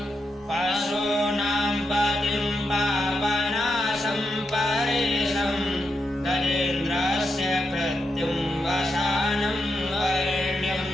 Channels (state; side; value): normal; both; correlation 0.85